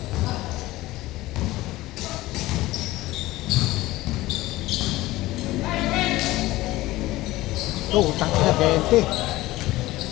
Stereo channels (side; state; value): right; quieter; 17.9 dB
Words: Oh, utang ina 20.